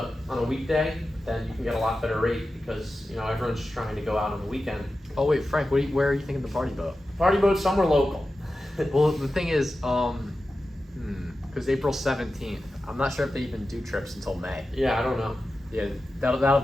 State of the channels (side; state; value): both; normal; correlation 0.93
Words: weekday, then you can get a lot better rate, because everyone's just trying to go out on the weekend. Oh wait, Frank, where are you thinking the party boat? Party boat somewhere local. Well, the thing is, because April 17th, I'm not sure if they even do trips until May. Yeah, I don't know. Yeah, that'll